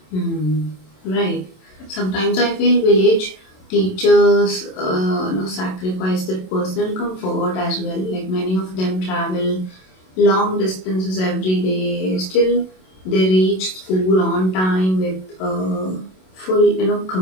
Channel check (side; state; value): right; late; 27 ms